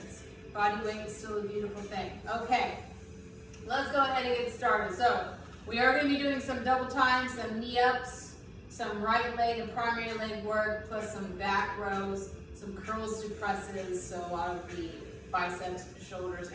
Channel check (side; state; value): both; identical; correlation 1.00